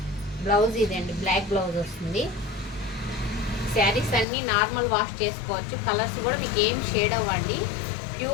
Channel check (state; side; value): drops out; right; at 4.2 s